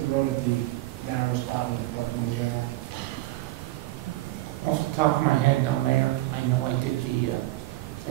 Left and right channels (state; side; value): quieter; left; 18.0 dB